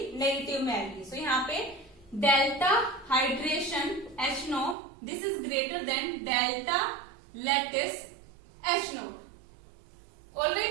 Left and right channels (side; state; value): left; drops out; at 4.8 s